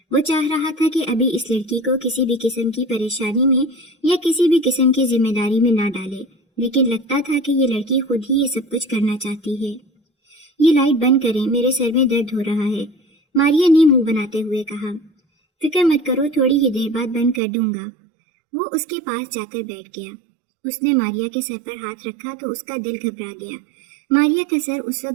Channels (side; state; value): left; drops out; at 17.4 s